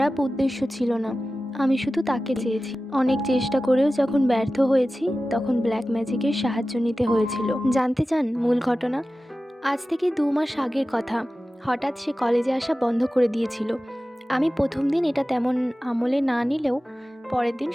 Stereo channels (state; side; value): normal; both; correlation 0.95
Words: উদ্দেশ্য ছিল না, আমি শুধু তাকে চেয়েছি। অনেক চেষ্টা করেও যখন ব্যর্থ হয়েছি তখন ব্ল্যাক ম্যাজিকের সাহায্য নিতে হয়েছিল। জানতে চান মূল ঘটনা? আজ থেকে ২ মাস আগের কথা। হঠাৎ সে কলেজে আসা বন্ধ করে দিয়েছিল। আমি প্রথম দিন এটা তেমন আমলে না নিলেও পরের দিন